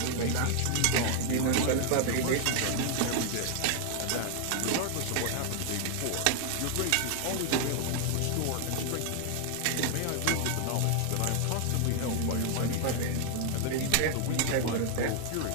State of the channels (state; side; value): different; both; correlation 0.00